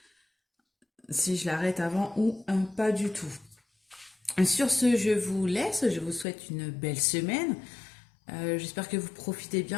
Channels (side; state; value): right; drops out; at 6.2 s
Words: si je l'arrête avant ou pas du tout. Sur ce, je vous laisse. Je vous souhaite une belle semaine. J'espère que vous profitez